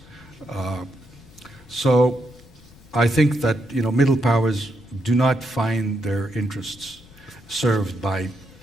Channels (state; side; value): noise; left; rumble, 24 dB below the sound